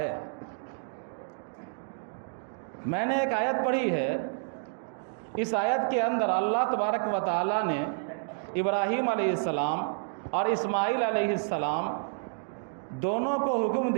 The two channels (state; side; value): silent; left; digital silence